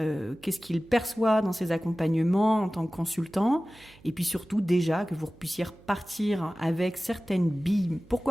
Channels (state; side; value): noise; right; hum, 25 dB below the sound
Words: qu'il perçoit dans ses accompagnements en tant que consultant, et puis surtout déjà que vous puissiez repartir avec certaines billes,